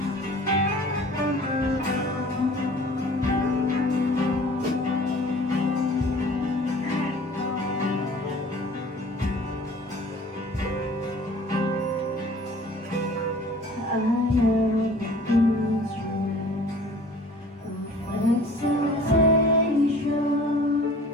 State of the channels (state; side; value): normal; both; correlation 0.47